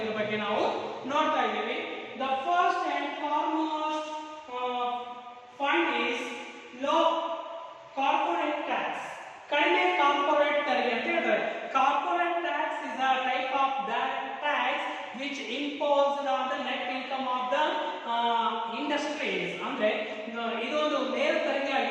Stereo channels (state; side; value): identical; both; correlation 1.00